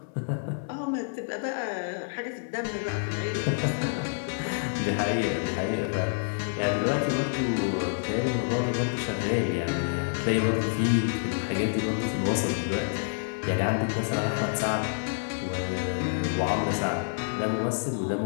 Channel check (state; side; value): silent; right; 59 dB below the other